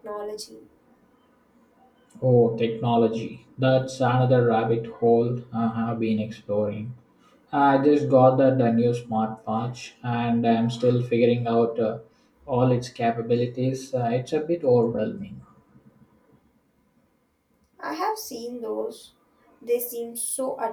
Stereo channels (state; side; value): identical; both; correlation 1.00